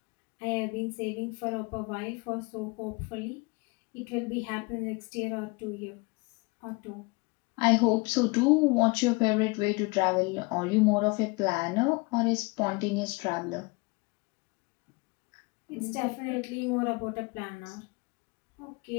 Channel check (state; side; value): quieter; right; 27.0 dB